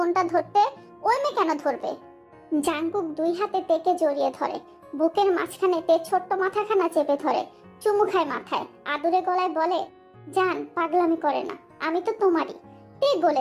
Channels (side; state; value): both; identical; correlation 1.00